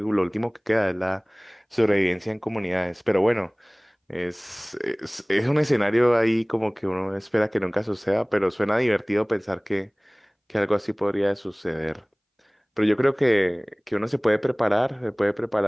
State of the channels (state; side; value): identical; both; correlation 1.00